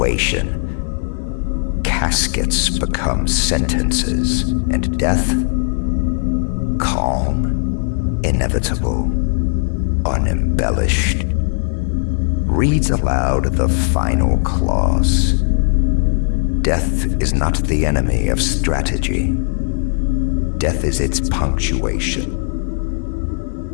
Caskets become sentences, and death, calm, inevitable, unembellished, reads aloud the final clause. Death is not the enemy of strategy. Death is its punctuation.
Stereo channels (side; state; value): right; silent; 55 dB below the other